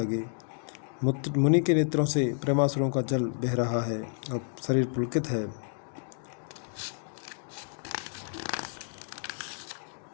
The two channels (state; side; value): silent; right; 56 dB below the other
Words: मुनि के नेत्रों से प्रेमासुरों का जल बह रहा है, अब शरीर पुलकित है।